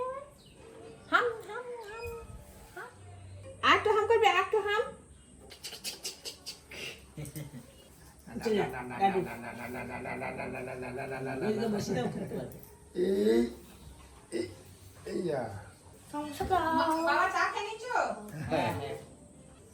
ফেল। হাম হাম হাম হাম। আর একটু হাম করবে, আর একটু হাম। বাবা চা খেয়ে নিচ্ছ?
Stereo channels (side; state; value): both; identical; correlation 1.00